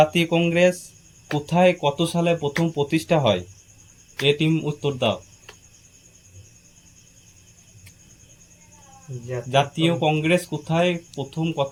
কংগ্রেস কোথায় কত সালে প্রথম প্রতিষ্ঠা হয়? এ টিম উত্তর দাও। জাতীয় কংগ্রেস কোথায় প্রথম কত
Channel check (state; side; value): identical; both; correlation 1.00